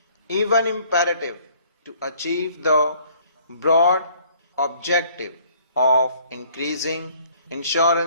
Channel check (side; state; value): both; inverted; correlation -0.59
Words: even imperative to achieve the broad objective of increasing